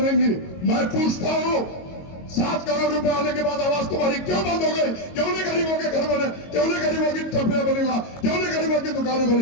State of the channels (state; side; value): late; right; 22 ms